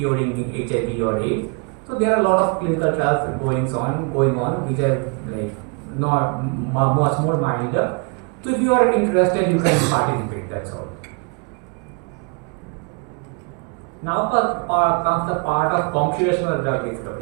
HIV or AIDS. So there are a lot of clinical trials going on which are like not much more milder. So if you are interested, you can participate. That's all. Now comes the part of computational drug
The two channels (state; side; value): quieter; left; 34.2 dB